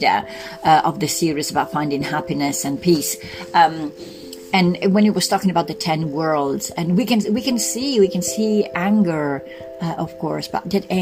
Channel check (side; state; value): both; identical; correlation 1.00